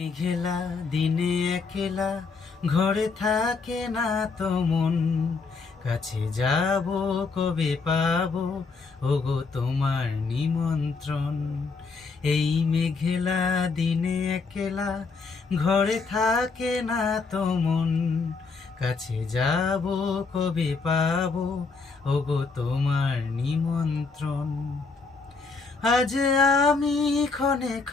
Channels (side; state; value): right; quieter; 4.5 dB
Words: মেঘেলা দিনে একলা ঘরে থাকে না তো মন, কাছে যাব কবে পাবো ওগো তোমার নিমন্ত্রণ। এই মেঘেলা দিনে একলা ঘরে থাকে না তো মন, কাছে যাব কবে পাবো ওগো তোমার নিমন্ত্রণ। আজ আমি ক্ষণে